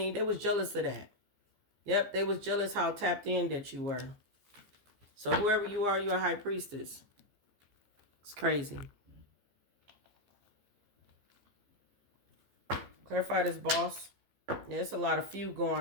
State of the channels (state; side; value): late; left; 14 ms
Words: They was jealous of that. Yep, they was jealous how tapped in that you were. So whoever you are, you're a high priestess. It's crazy. Clarify this boss. Yeah, it's a lot of feud